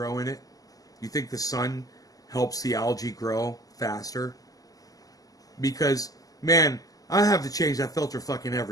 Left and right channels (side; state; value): right; late; 0.17 ms